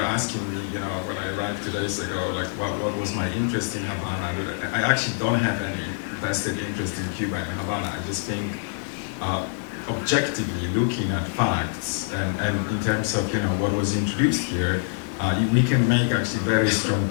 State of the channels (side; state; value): right; silent; digital silence